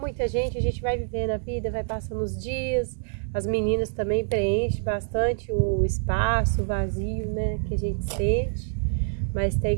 gente a gente vai vivendo a vida, vai passando os dias. As meninas também preenchem bastante o espaço, o vazio, né, que a gente sente. Mas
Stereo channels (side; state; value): left; silent; digital silence